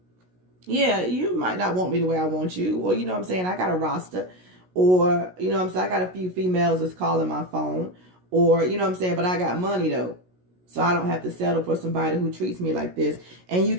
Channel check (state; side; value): late; left; 16 ms